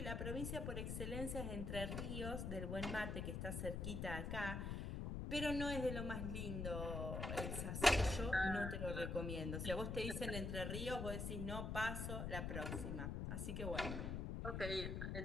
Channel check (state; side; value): noise; left; rumble, 2 dB below the sound